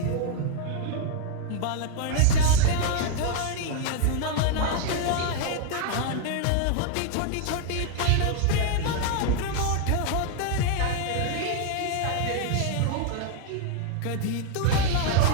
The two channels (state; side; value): different; both; correlation 0.00